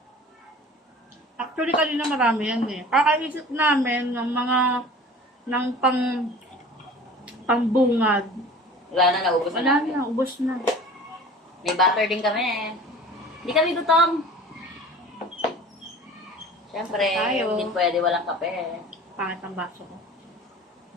Actually, kanina marami yan eh. Kakaisip namin ng mga pangbungad. Wala na, naubos na Wala namin. na, ubos na. May butter din kami. Hindi kami gutom. Siyempre, Tayo. hindi pwede walang kape. Pangit ang baso ko.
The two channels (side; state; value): both; normal; correlation 0.43